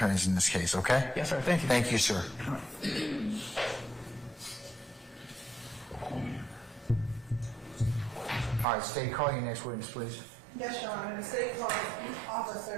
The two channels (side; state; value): left; drops out; at 8.7 s